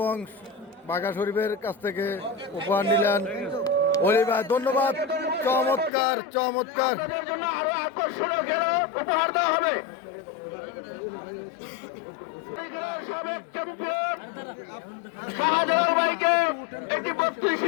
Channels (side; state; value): right; drops out; at 5.9 s